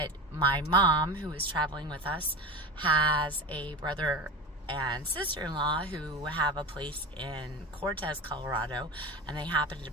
my mom, who is traveling with us, has a brother and sister-in-law who have a place in Cortez, Colorado, and they happened to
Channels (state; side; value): normal; both; correlation 0.27